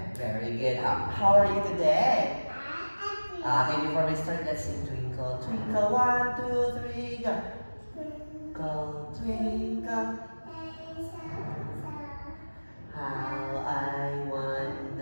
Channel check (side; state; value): both; inverted; correlation -1.00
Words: Very good. How are you today? Okay, before we start, let's sing Twinkle, Twinkle, 1, 2, 3, go. Twinkle, twinkle, how I